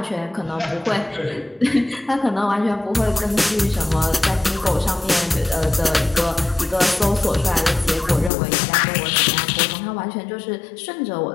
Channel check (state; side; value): drops out; right; at 8.3 s